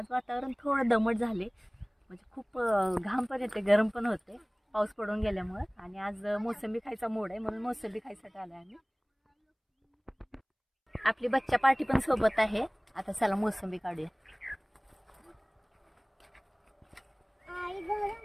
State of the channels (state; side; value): identical; both; correlation 1.00